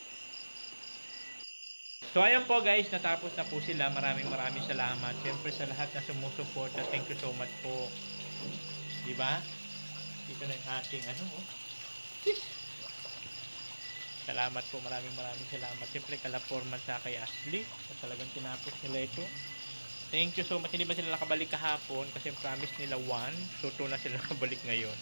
So ayan po guys, natapos na po sila. Maraming salamat. Siyempre sa lahat na sumusuporta, thank you so much po. Di ba? Dito na yung ating Salamat po, maraming salamat. Siyempre kala Foreman sa kay Ashley, at talagang tinapos nila ito. Thank you so much. Hindi ba sila nakabalik kahapon kasi promise nila 1, so 2 na sila nakabalik ngayon.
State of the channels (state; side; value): inverted; both; correlation -1.00